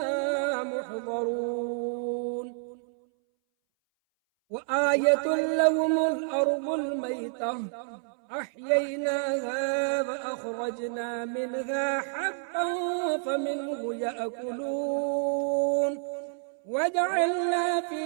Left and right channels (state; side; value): silent; left; 59 dB below the other